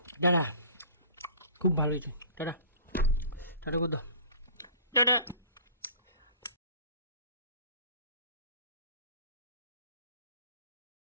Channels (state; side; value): inverted; both; correlation -0.43